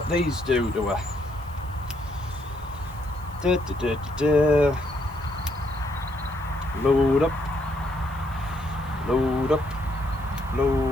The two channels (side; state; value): left; noise; hiss, 26 dB below the sound